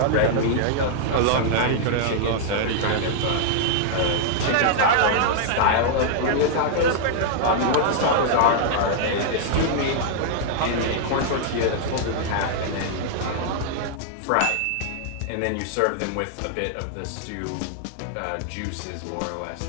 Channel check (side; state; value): both; different; correlation -0.01